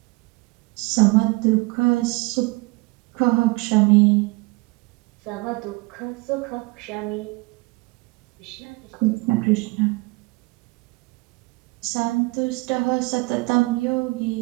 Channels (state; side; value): quieter; left; 25.8 dB